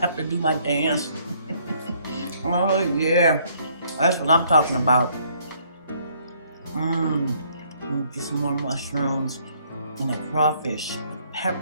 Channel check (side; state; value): both; inverted; correlation -0.65